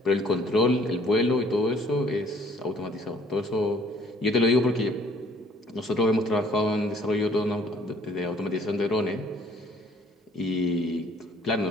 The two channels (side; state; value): both; normal; correlation 0.59